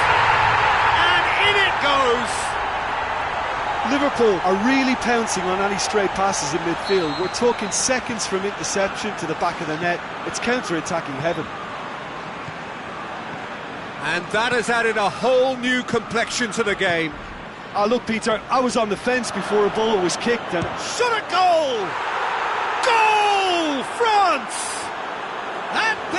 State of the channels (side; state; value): both; identical; correlation 1.00